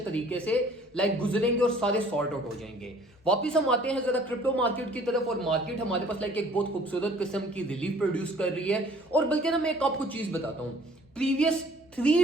तरीके से गुजरेंगे और सारे सॉर्ट आउट हो जाएंगे। वापिस हम आते हैं जरा क्रिप्टो मार्केट की तरफ। और मार्केट हमारे पास एक बहुत खूबसूरत किस्म की रिलीफ प्रोड्यूस कर रही है। और बल्कि ना मैं एक आपको चीज बताता हूं, प्रीवियस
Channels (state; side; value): normal; both; correlation 0.54